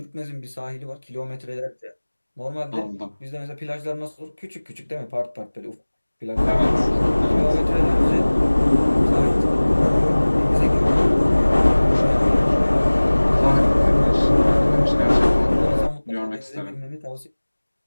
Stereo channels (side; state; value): both; inverted; correlation -1.00